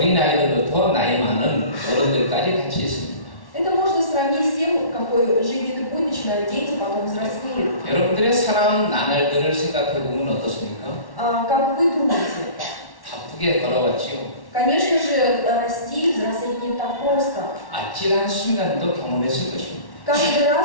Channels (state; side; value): late; right; 1.1 ms